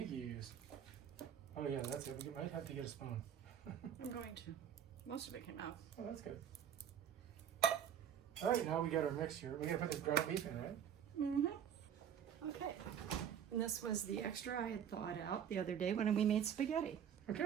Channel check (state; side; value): quieter; left; 8.9 dB